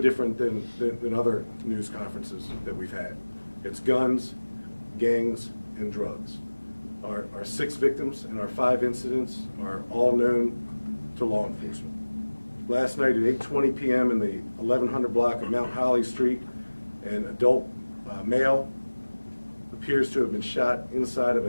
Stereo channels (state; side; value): inverted; both; correlation -1.00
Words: than other news conferences that we've had. It's guns, gangs, and drugs. Our 6 victims and our 5 incidents are all known to law enforcement. Last night at 8:20 p.m. in the 1100 block of Mount Holly Street, an adult male appears to have been shot inside of